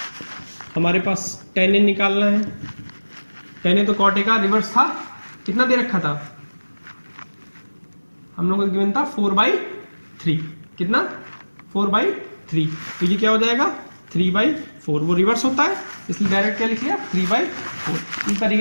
हमारे पास tan ए निकालना है. tan ए तो कॉट ए का रिवर्स था, कितना दे रखा था हम लोगों को गिवन था 4/3, कितना 4/3, तो ये क्या हो जाएगा 3/4, वो रिवर्स होता है इसलिए डायरेक्ट क्या लिख लिया 3/4. इस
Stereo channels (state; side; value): inverted; both; correlation -1.00